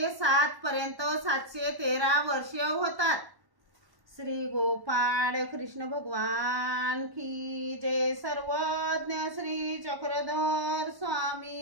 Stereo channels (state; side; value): late; left; 1.1 ms